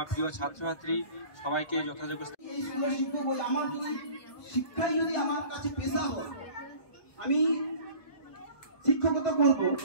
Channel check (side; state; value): right; late; 1.2 ms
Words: প্রিয় ছাত্রছাত্রী, সবাইকে যথাযোগ্য। এই স্কুলের শিক্ষক বলে আমার যদি শিক্ষাই যদি আমার কাছে পেশা হয়, আমি শিক্ষকতা করব